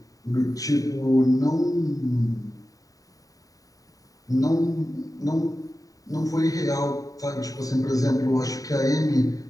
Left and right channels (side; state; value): right; late; 0.17 ms